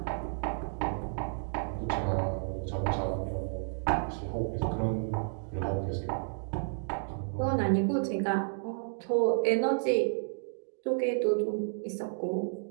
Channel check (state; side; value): silent; left; digital silence